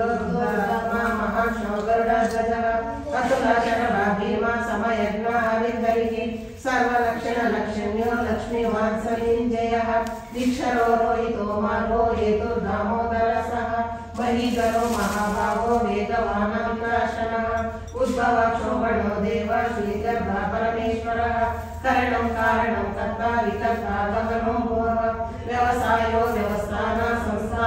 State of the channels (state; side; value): identical; both; correlation 1.00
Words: महाशोगरुडध्वजः अतुलाचरणा भीमा समयज्ञः विद्धरिः सर्वलक्षणलक्षण्यो लक्ष्मीवात्सलीञ्जयः दीक्षरो रोहितो मार्गो हेतु दामोदरसः महीधरो महाभागो वेदवानान्तरशनः उद्भवक्षोभणो देव श्रीगर्भा परमेश्वरः करणं कारणं कर्ता विकर्ता गगनो भुवः व्यवसायो व्यवस्थान